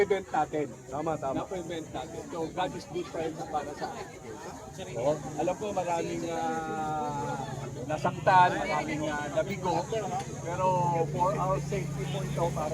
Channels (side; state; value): both; identical; correlation 1.00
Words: natin. Tama. Na-prevent natin. So God is good para sa atin. Alam ko maraming nasaktan, maraming nabigo, pero for our safety po ito